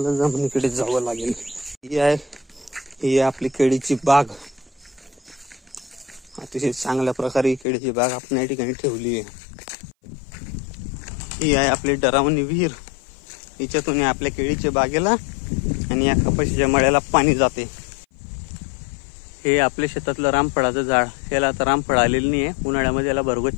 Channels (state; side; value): drops out; right; at 7.7 s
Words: जमिनीकडे जावं लागेल. ही आहे आपली केळीची बाग. अतिशय चांगल्या प्रकारे केळीची बाग आपण या ठिकाणी ठेवली आहे. ही आहे आपली डरावणी विहीर. हिच्यातून आपल्या केळीच्या बागेला आणि या कपाशीच्या मळ्याला पाणी जाते. हे आपल्या शेतातलं रामफळाचं झाड. याला आता रामफळ आलेलं नाही आहे. उन्हाळ्यामध्ये याला